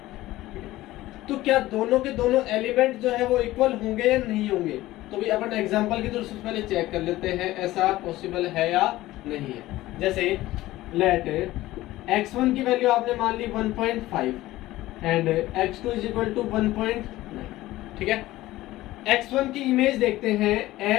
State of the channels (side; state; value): right; quieter; 16.7 dB